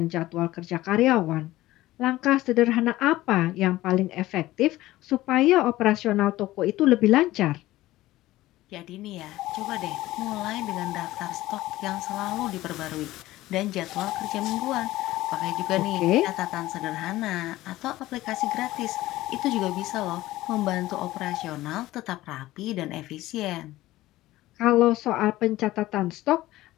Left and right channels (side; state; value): right; quieter; 16.6 dB